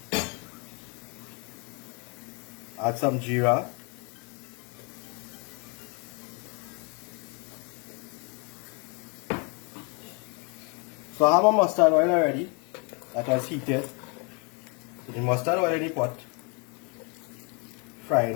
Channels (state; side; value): quieter; right; 34.3 dB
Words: Add some jeera. So I have my mustard oil already that was heated. So the mustard oil in the pot, frying